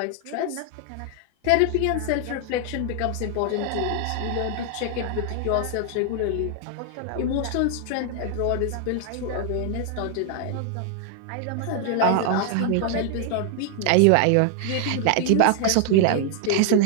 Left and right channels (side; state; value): both; different; correlation 0.00